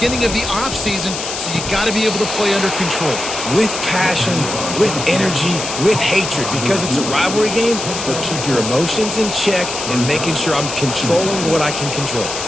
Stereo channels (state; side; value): noise; left; hiss, 6 dB below the sound